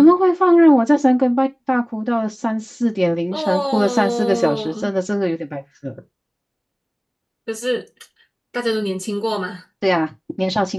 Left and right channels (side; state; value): both; identical; correlation 1.00